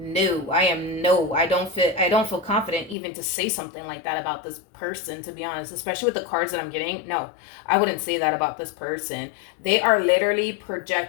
I don't feel confident even to say something like that about this person, to be honest, especially with the cards that I'm getting. No, I wouldn't say that about this person. They are literally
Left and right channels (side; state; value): right; drops out; at 3.0 s